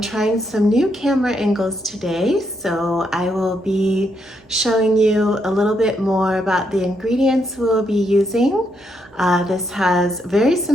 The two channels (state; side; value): normal; both; correlation 0.78